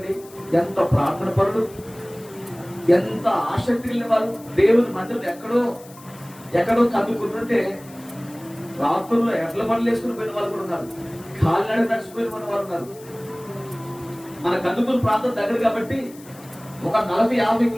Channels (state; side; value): noise; left; hiss, 22 dB below the sound